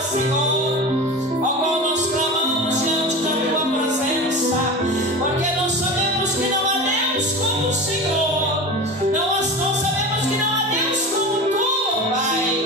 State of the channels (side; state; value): both; normal; correlation 0.30